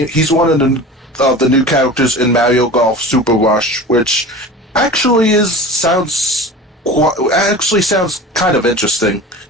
He's one of the new characters in Mario Golf Super Rush, which actually sounds kind of interesting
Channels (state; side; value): normal; both; correlation 0.36